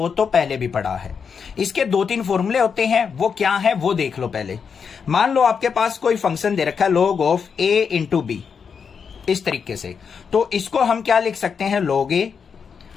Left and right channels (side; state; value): right; quieter; 6.3 dB